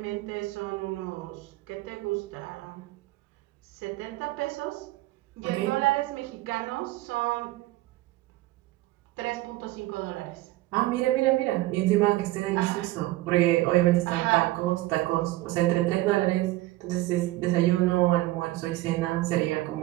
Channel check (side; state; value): left; quieter; 18.0 dB